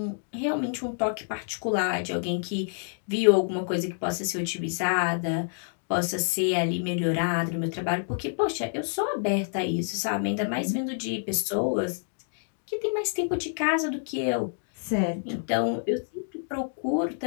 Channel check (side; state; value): right; silent; digital silence